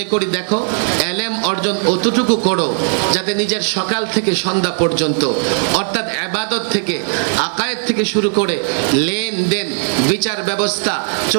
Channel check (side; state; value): left; silent; 60 dB below the other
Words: করি দেখো, এলেম অর্জন অতটুকু করো যাতে নিজের সকাল থেকে সন্ধ্যা পর্যন্ত, অর্থাৎ ইবাদত থেকে, আকায়েদ থেকে শুরু করে লেনদেন, বিচার ব্যবস্থা,